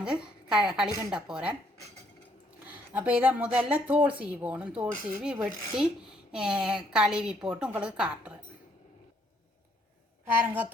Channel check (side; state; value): both; normal; correlation 0.68